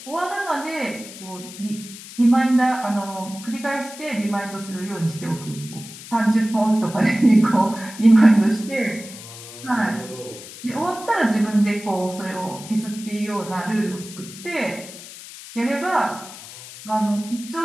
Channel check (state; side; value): noise; left; hiss, 15 dB below the sound